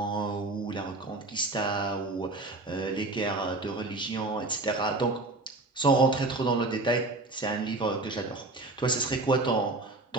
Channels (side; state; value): left; quieter; 3.0 dB